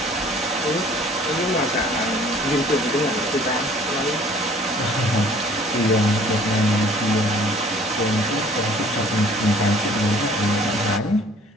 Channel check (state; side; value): normal; both; correlation 0.54